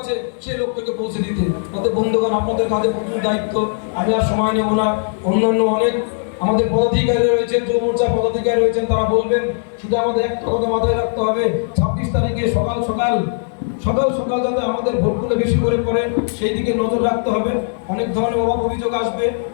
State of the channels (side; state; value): right; silent; digital silence